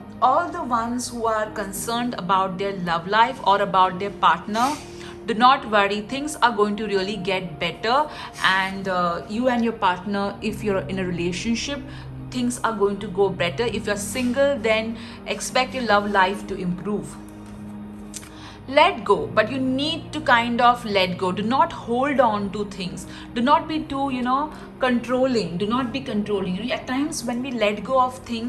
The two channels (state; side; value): identical; both; correlation 1.00